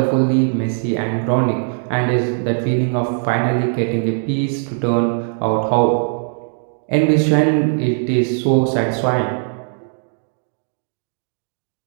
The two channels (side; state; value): left; silent; 60 dB below the other